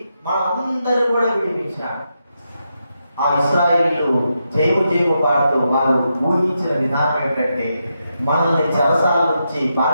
మనందరూ కూడా విడిపించాడు. ఆ ఇశ్రాయేలీయులు జయము పాడుతూ వారు ఊహించిన విధానం ఏంటంటే మనల్ని చెరసాల నుంచి,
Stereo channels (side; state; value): both; inverted; correlation -0.84